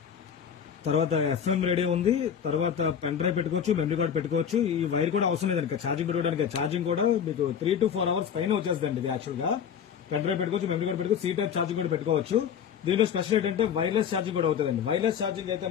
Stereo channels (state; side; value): quieter; right; 8.0 dB